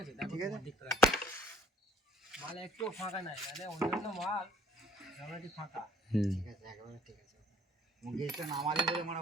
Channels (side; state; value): both; normal; correlation 0.55